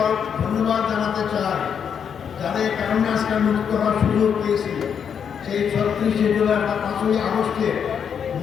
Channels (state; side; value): quieter; right; 7.5 dB